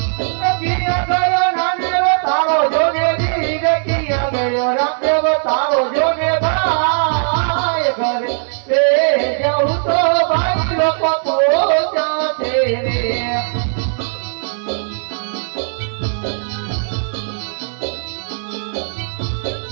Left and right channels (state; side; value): silent; left; digital silence